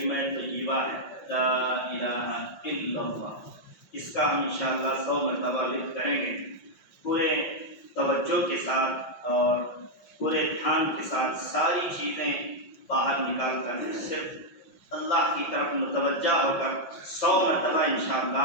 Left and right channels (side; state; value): right; late; 5.6 ms